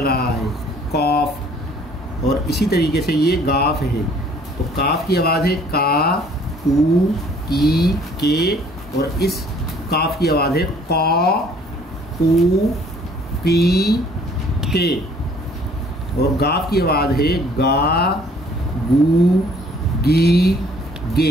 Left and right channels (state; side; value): normal; both; correlation 0.57